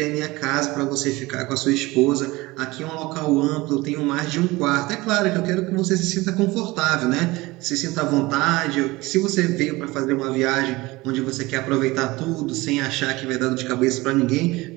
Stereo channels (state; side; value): quieter; left; 21.1 dB